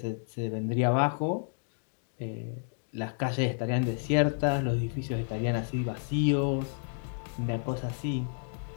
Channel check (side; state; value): right; silent; digital silence